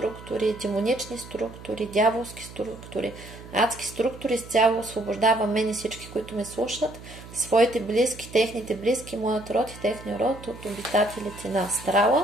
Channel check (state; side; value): noise; right; hum, 16 dB below the sound